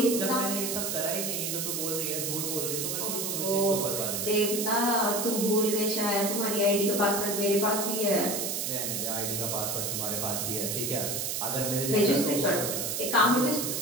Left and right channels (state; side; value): noise; right; hiss, 1 dB below the sound